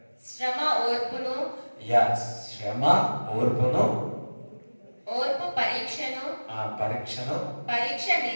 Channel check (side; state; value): both; inverted; correlation -1.00